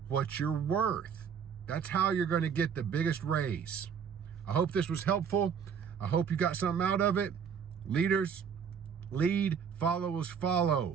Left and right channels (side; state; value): left; quieter; 7.2 dB